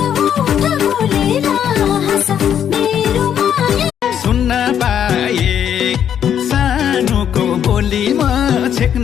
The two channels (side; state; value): right; quieter; 9.2 dB